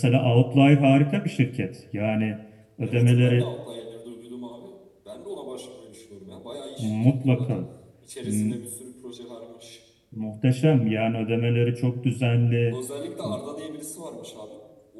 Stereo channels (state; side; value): identical; both; correlation 1.00